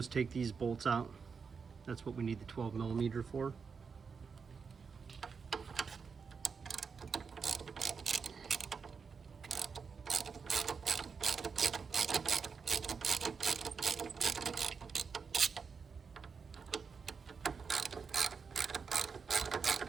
take these bolts out. That's what we need the 12mm for.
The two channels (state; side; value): quieter; left; 5.6 dB